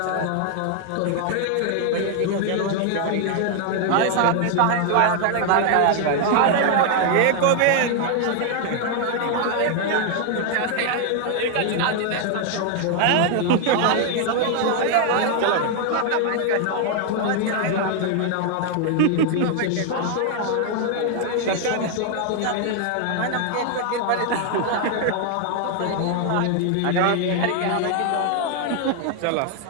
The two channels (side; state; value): both; different; correlation 0.00